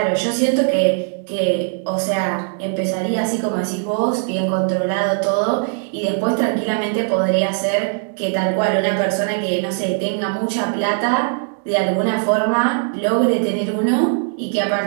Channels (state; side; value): silent; left; 66 dB below the other